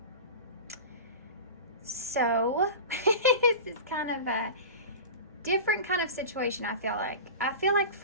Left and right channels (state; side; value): inverted; both; correlation -0.31